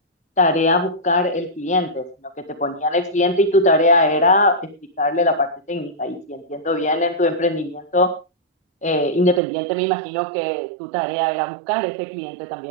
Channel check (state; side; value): drops out; left; at 9.4 s